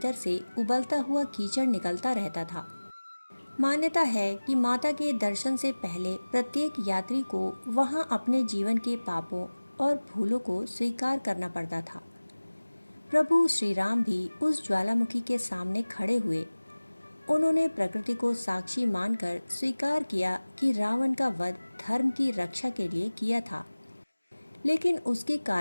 से उबलता हुआ कीचड़ निकलता रहता था। मान्यता है कि माता के दर्शन से पहले प्रत्येक यात्री को वहां अपने जीवन के पापों और भूलों को स्वीकार करना पड़ता था। प्रभु श्री राम भी उस ज्वालामुखी के सामने खड़े हुए। उन्होंने प्रकृति को साक्षी मानकर स्वीकार किया कि रावण का वध धर्म की रक्षा के लिए किया था, लेकिन उसके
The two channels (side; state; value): both; inverted; correlation -1.00